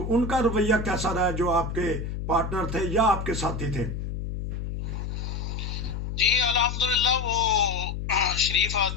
ان کا رویہ کیسا رہا، جو آپ کے پارٹنر تھے یا آپ کے ساتھی تھے؟ جی الحمدللہ وہ شریف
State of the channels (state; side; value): noise; left; hum, 5 dB below the sound